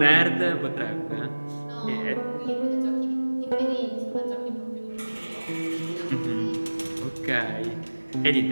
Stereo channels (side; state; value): both; inverted; correlation -1.00